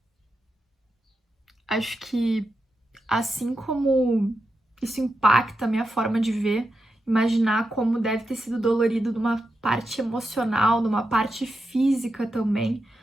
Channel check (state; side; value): normal; both; correlation 0.88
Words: acho que assim como isso impacta a minha forma de ver, imaginar como deve ter sido dolorido numa parte emocional, numa parte física também,